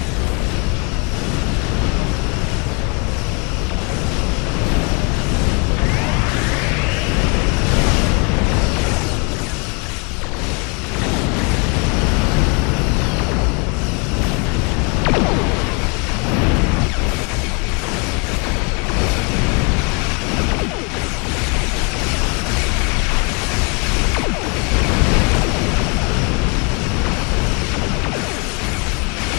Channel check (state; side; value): quieter; right; 33.1 dB